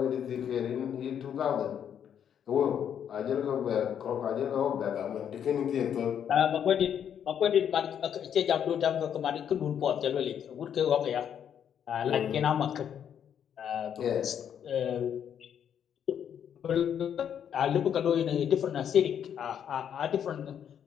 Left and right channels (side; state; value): right; quieter; 8.8 dB